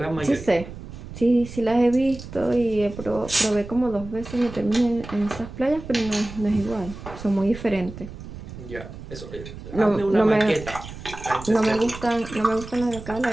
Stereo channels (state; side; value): noise; right; rumble, 13 dB below the sound